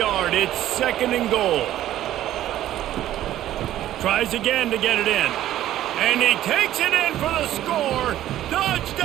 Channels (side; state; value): left; quieter; 13.0 dB